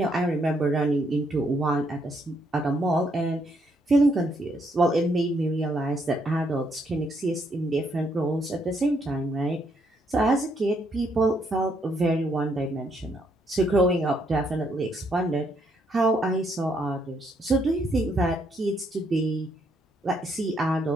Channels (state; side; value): normal; both; correlation 0.74